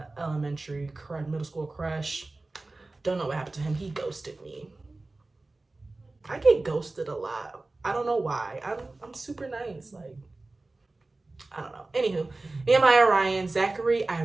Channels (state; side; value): quieter; left; 3.2 dB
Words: elementary crush, middle school crush. Don't know what happened to him. He ghosted me. I get ghosted a lot. I don't know why. I'm super nice. Like, I don't know. Anywho, Nehemiah, Ryan, Zachary. I